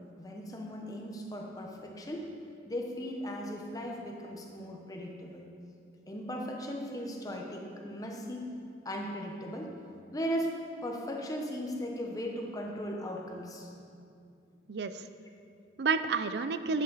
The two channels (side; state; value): both; normal; correlation 0.45